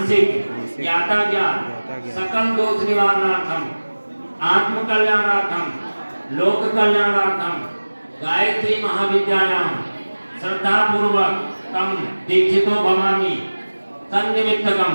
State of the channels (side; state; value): both; inverted; correlation -1.00